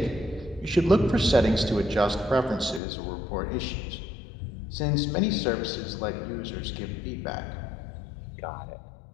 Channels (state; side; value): drops out; right; at 2.8 s